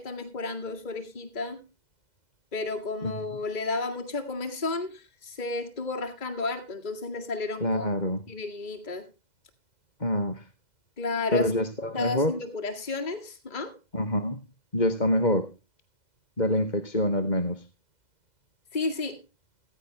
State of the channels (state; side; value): late; right; 2.0 ms